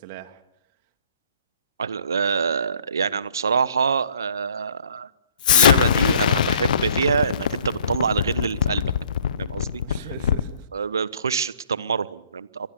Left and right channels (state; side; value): inverted; both; correlation -0.58